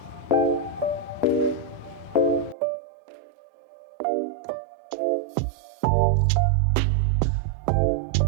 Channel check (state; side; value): drops out; left; at 2.6 s